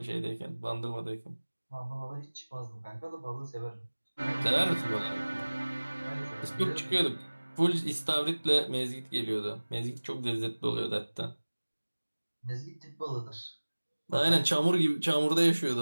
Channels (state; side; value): inverted; both; correlation -1.00